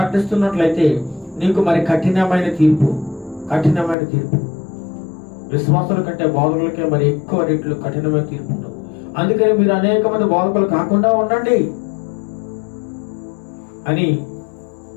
నీకు మరి కఠినమైన తీర్పు. విశ్వాసుల కంటే బోధకులకే మరి ఎక్కువ రెట్లు కఠినమైన తీర్పు ఉంటుంది. అందుకని మీరు అనేక మంది బోధకులు కాకుండా ఉండండి అని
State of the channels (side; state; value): right; drops out; at 4.0 s